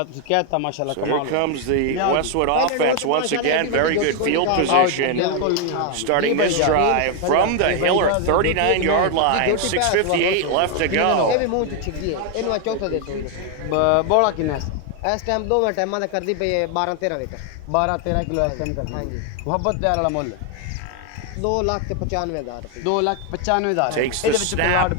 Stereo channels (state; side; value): different; both; correlation 0.01